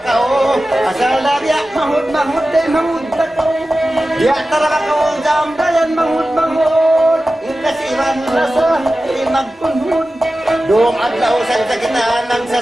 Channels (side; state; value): both; normal; correlation 0.94